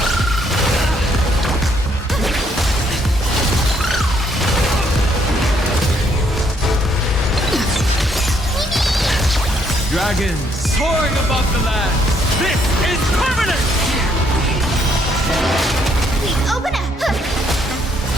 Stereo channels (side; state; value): both; normal; correlation 0.70